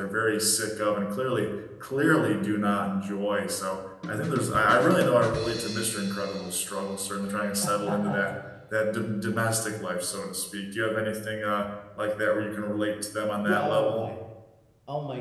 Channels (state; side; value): identical; both; correlation 1.00